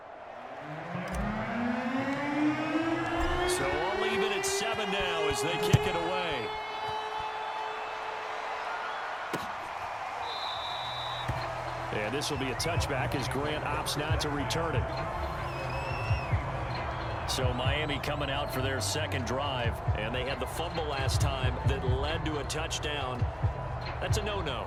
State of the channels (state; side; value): identical; both; correlation 1.00